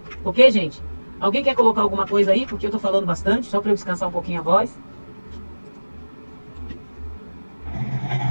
Ok, gente? Alguém quer colocar alguma coisa aí? Porque eu estou falando bastante, só para eu descansar um pouquinho a voz.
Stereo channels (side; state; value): both; inverted; correlation -1.00